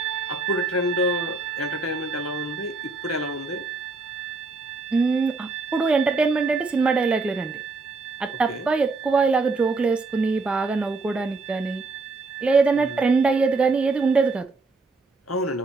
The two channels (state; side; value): quieter; left; 3.7 dB